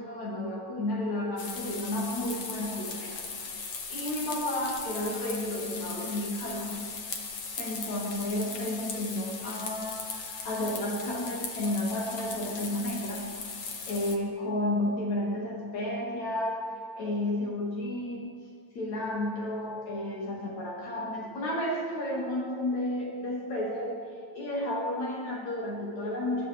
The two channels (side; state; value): right; late; 9.0 ms